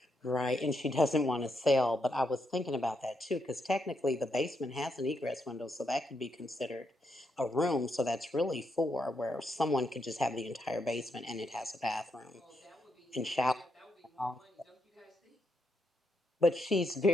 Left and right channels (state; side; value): normal; both; correlation 0.80